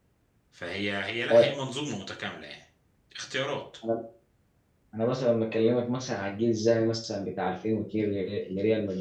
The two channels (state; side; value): identical; both; correlation 1.00